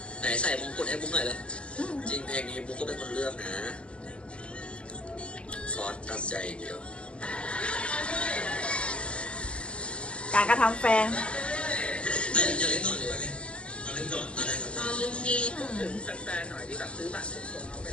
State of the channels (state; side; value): late; right; 0.055 ms